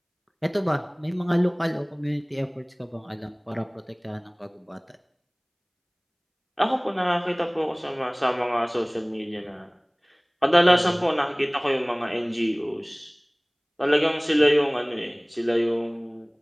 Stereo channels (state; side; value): identical; both; correlation 1.00